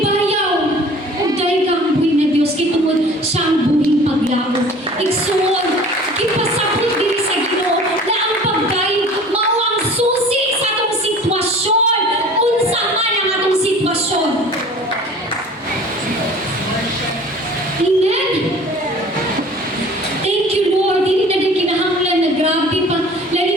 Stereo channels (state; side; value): normal; both; correlation 0.45